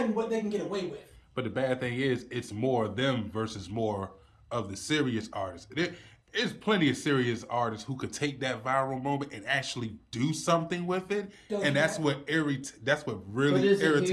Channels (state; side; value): identical; both; correlation 1.00